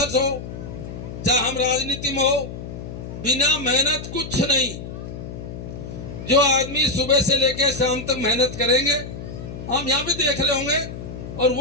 हो, चाहे हम राजनीति में हो, बिना मेहनत कुछ नहीं। जो आदमी सुबह से लेकर शाम तक मेहनत करेंगे, हम यहाँ भी देख रहे होंगे, और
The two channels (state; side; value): noise; left; hum, 10 dB below the sound